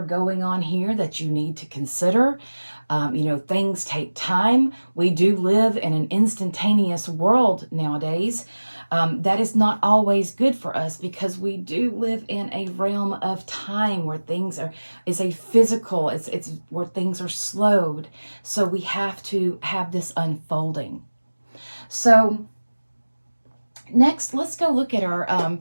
going on here that you need to consider. Things take time. We do live in an instantaneous world nowadays. That is not always good for us, because we do live in a realm of time where things it's where things are slowed. So we have to have this unfolding. So next, let's go look at our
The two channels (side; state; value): both; inverted; correlation -1.00